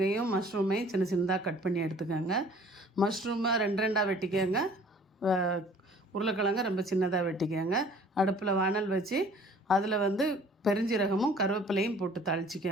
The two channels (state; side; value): normal; both; correlation 0.52